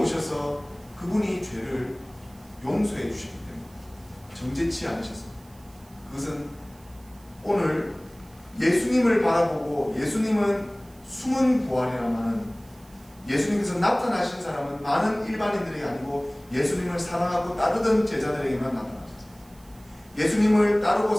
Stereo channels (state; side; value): noise; right; hiss, 28 dB below the sound